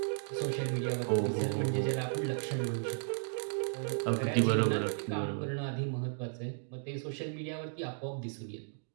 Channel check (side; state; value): left; silent; digital silence